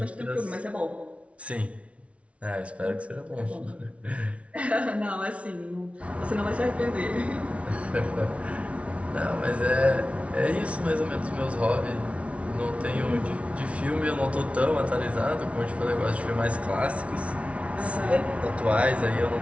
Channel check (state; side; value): late; left; 0.063 ms